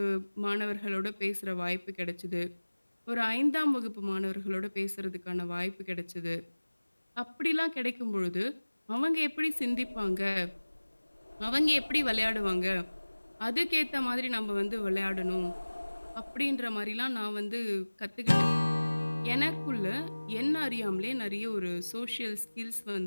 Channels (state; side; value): inverted; both; correlation -1.00